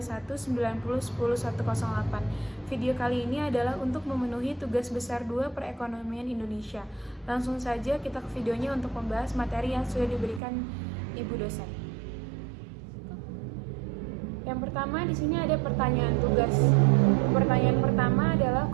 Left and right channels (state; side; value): drops out; left; at 10.4 s